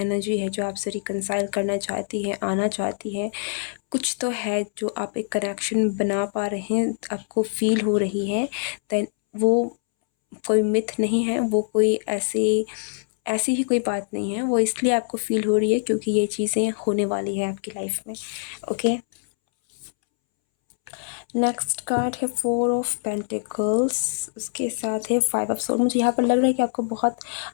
है जो आपसे रिकंसाइल करना चाहती है, आना चाहती है। कुछ तो है जो आप एक कनेक्शन बना पा रहे हैं, आपको फील हो रही है। देन वो कोई मिथ नहीं है, वो कोई ऐसी ही कोई बात नहीं है, वो इसलिए आपको फील हो रही है क्योंकि ये चीज़ें होने वाली है आपकी लाइफ में। ओके, नेक्स्ट कार्ड है 4 ऑफ पेंटिकल्स, उसके साथ है 5 ऑफ सोर्ड। मुझे यहाँ पर लग रहा है कि आपको बहुत,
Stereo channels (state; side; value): silent; right; 62 dB below the other